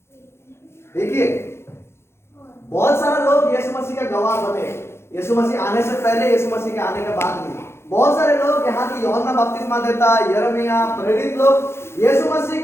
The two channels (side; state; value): right; late; 0.12 ms